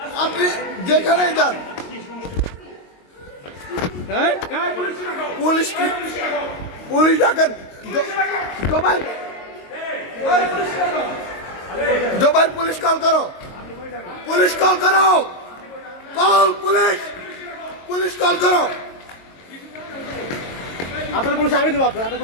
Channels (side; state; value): right; late; 22 ms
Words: আপনি যেখানেই যান, পুলিশ কি, পুলিশ ডাকেন। জোবাইর পুলিশ কল করো, পুলিশ কল করো, কল পুলিশ, পুলিশ কল করো। আপনার পুলিশ আমি দেবো, আপনার